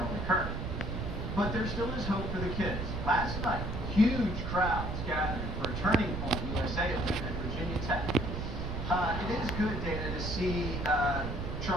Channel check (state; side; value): noise; right; rumble, 3 dB below the sound